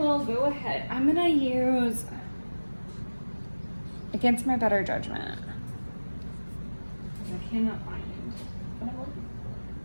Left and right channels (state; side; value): inverted; both; correlation -1.00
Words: go ahead. I'm gonna use Against My Better Judgment. I cannot find it.